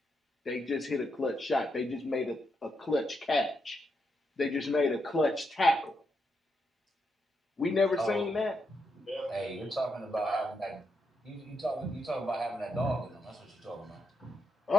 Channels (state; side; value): normal; both; correlation 0.82